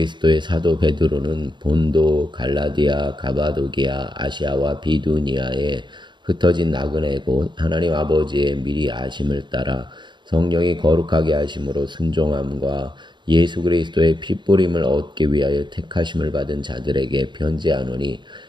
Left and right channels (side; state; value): left; late; 0.22 ms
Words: 사도 베드로는 본도, 갈라디아, 가바도기아, 아시아와 비두니아에 흩어진 나그네 곧 하나님 아버지의 미리 아심을 따라 성령이 거룩하게 하심으로 순종함과 예수 그리스도의 핏부림을 얻기 위하여 택하심을 받은 자들에게 편지하노니